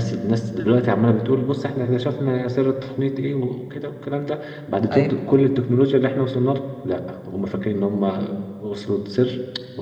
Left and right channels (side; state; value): both; identical; correlation 1.00